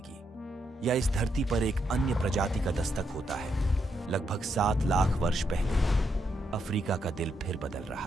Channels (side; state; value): both; normal; correlation 0.79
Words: या इस धरती पर एक अन्य प्रजाति का दस्तक होता है? लगभग 7 लाख वर्ष पहले अफ्रीका का दिल फिर बदल